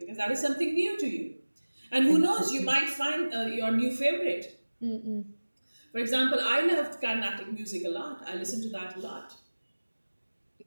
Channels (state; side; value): inverted; both; correlation -1.00